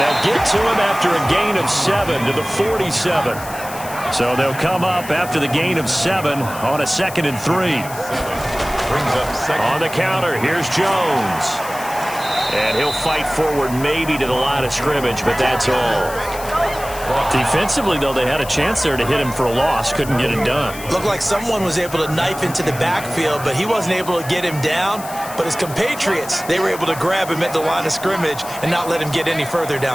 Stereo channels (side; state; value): left; noise; hiss, 14 dB below the sound